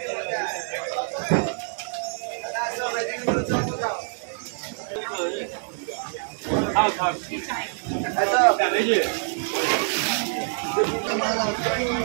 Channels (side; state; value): left; silent; 61 dB below the other